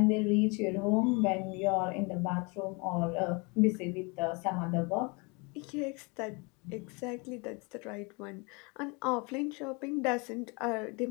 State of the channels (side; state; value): right; quieter; 29.9 dB